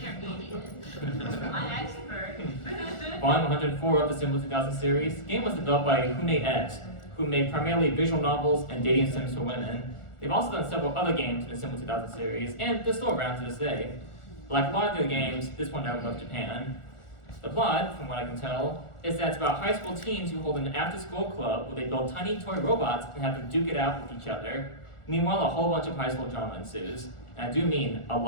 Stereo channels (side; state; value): right; late; 1.4 ms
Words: My expert. Volume 104 of the Symbol 2000 series. The game was developed by Hune X, who made primarily visual novels and dating sims for women. They've also done several other games in the Symbol 2000 series, and they're still around to this day. Like a lot of their games, this one never left Japan. The plot, from what I can tell, is that it's about high school teens who hold an after-school club where they build tiny toy robots and have them duke it out with each other. Meanwhile, a whole bunch of high school drama ensues. And I do mean a